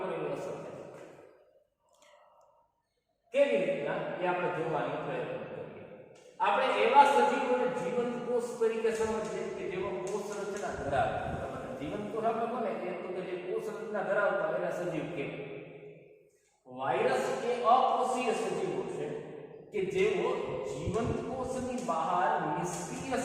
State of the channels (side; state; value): both; identical; correlation 1.00